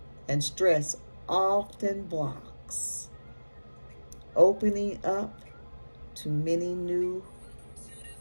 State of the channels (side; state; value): both; inverted; correlation -1.00